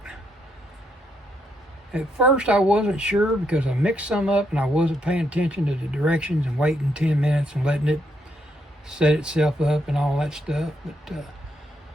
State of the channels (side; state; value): both; normal; correlation 0.77